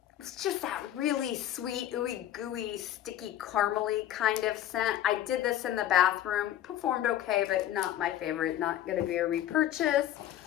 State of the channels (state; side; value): quieter; right; 12.2 dB